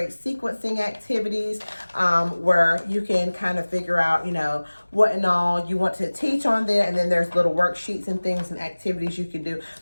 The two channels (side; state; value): both; inverted; correlation -1.00